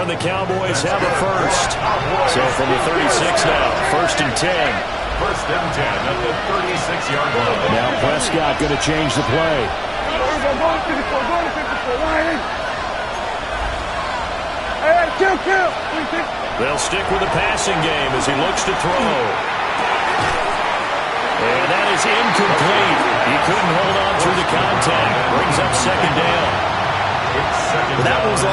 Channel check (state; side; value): identical; both; correlation 1.00